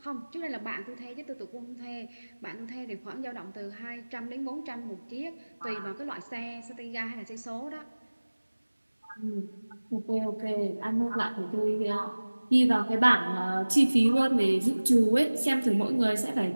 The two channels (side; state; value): both; inverted; correlation -1.00